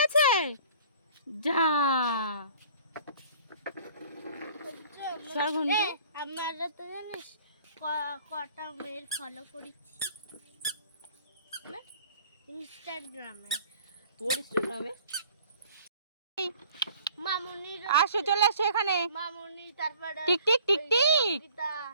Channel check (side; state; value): both; inverted; correlation -0.52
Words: যা সরঘন্টু আমরা তো জানিস কটা মেয়ের ফলো করেছি ইনস্টাগ্রামে। তোর ইনস্টাগ্রামে মামুনি আসো চলে আসো এখানে মামুনি তারপরে টিকটিক টিকটিক